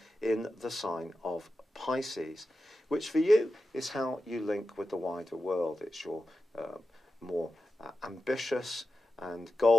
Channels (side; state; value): both; normal; correlation 0.91